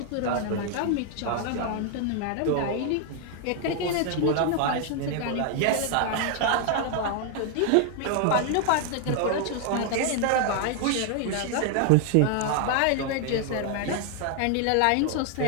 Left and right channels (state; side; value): different; both; correlation 0.00